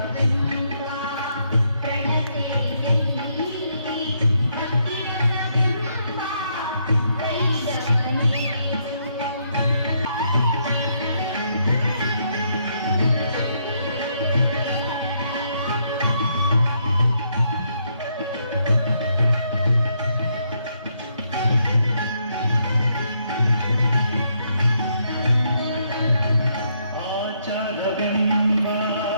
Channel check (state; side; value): inverted; both; correlation -0.75